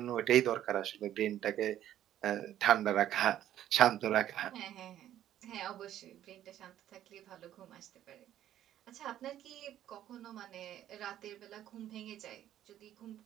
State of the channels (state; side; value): quieter; left; 11.8 dB